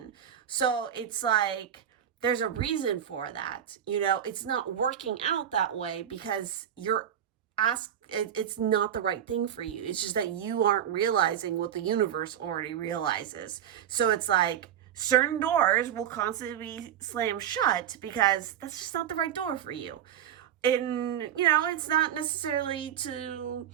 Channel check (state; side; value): quieter; left; 9.9 dB